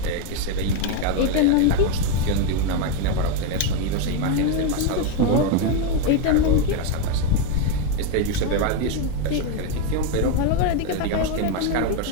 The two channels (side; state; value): both; different; correlation 0.02